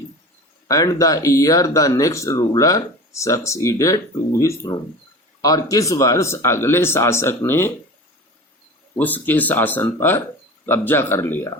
And the year the next ruler succeeded to his throne, और किस वर्ष अगले शासक ने उसके शासन पर कब्जा कर लिया।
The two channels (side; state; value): both; normal; correlation 0.35